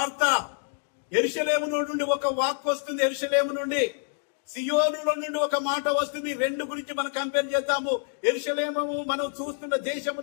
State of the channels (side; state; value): right; silent; digital silence